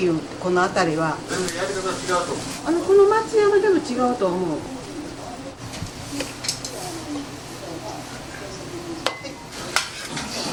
うこの辺りは全然やり方違うと思う。この松山でも違うと思う。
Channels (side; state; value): both; identical; correlation 1.00